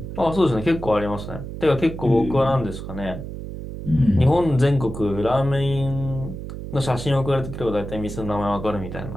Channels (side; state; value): right; noise; hum, 9 dB below the sound